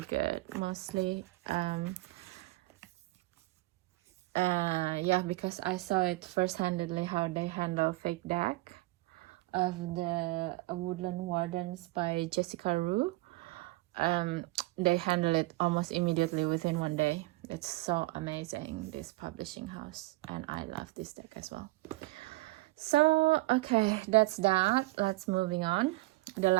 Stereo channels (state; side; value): quieter; left; 21.4 dB